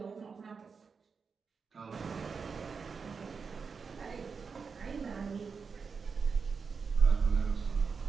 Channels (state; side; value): quieter; left; 5.4 dB